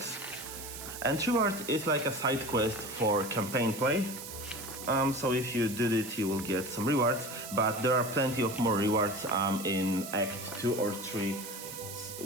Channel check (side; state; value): right; noise; hiss, 10 dB below the sound